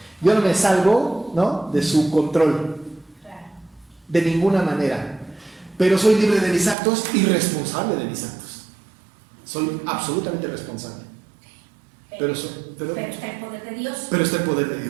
Yo no me salgo, ¿no?, de su control de ninguna manera, pero soy libre de mis actos y responsable de mis actos. Soy absolutamente responsable. Pero está el poder de Dios. Pero está el poder de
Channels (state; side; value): drops out; left; at 6.8 s